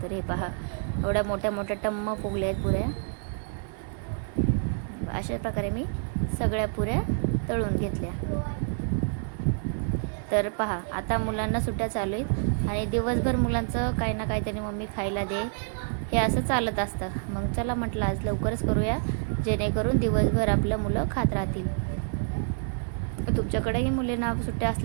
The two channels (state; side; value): silent; left; digital silence